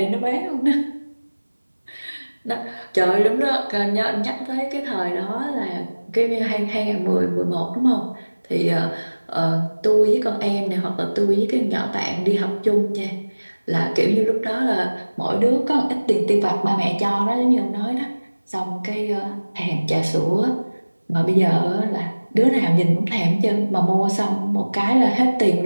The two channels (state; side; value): inverted; both; correlation -1.00